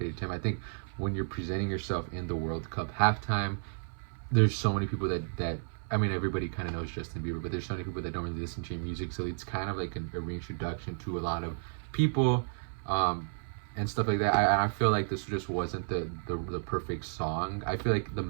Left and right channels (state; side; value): silent; left; 55 dB below the other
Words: to him. I think when you're presenting yourself in the World Cup halftime, there's so many people that I mean, everybody kind of knows Justin Bieber, but there's so many people that don't really listen to your music, so it's kind of like a reintroduction to a lot of people, and stuff like that. I feel like this just wasn't the perfect song. I feel like the